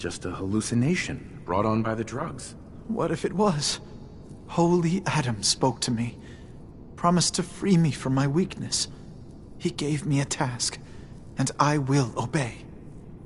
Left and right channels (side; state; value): both; identical; correlation 1.00